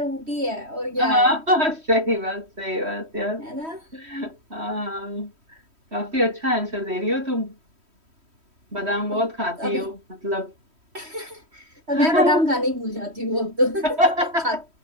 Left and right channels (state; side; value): late; left; 3.1 ms